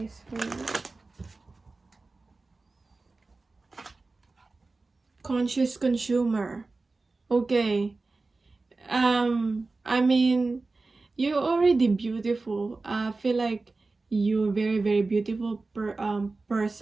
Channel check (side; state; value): left; quieter; 3.6 dB